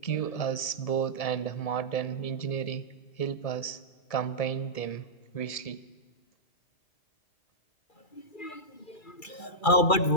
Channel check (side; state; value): right; late; 2.3 ms